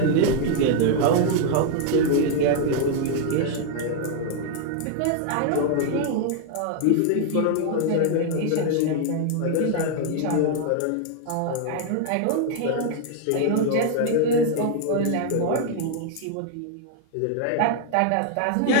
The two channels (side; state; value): both; different; correlation 0.00